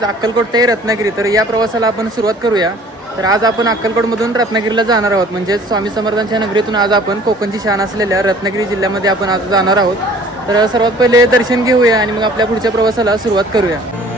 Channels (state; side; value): normal; both; correlation 0.51